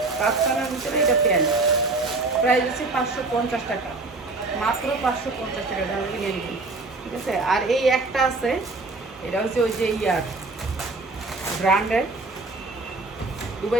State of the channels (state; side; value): quieter; left; 3.3 dB